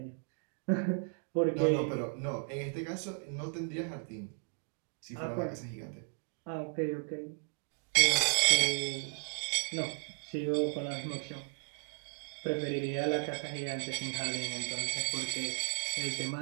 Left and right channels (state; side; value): silent; left; 54 dB below the other